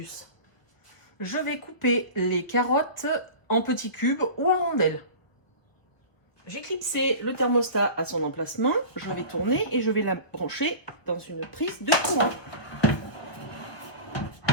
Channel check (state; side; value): late; right; 1.2 ms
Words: Je vais couper les carottes en petits cubes ou en rondelles. J'ai clipsé le thermostat à son emplacement. Je vais tourner et je vais la brancher dans une prise de courant.